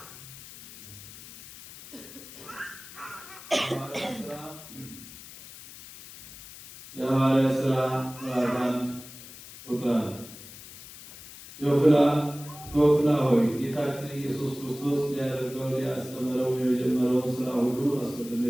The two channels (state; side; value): noise; left; hiss, 16 dB below the sound